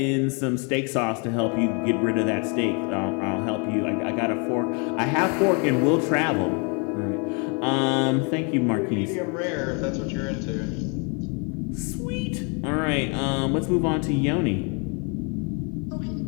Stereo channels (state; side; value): quieter; right; 35.2 dB